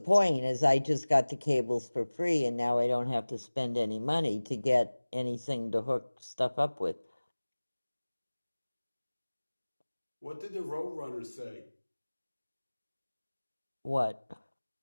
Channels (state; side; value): inverted; both; correlation -1.00